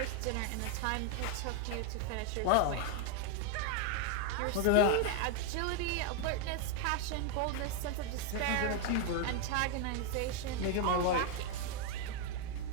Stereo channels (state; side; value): different; both; correlation 0.01